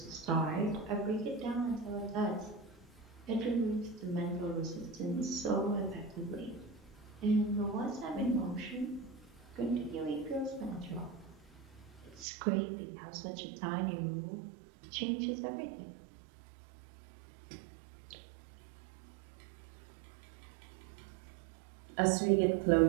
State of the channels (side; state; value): left; drops out; at 12.2 s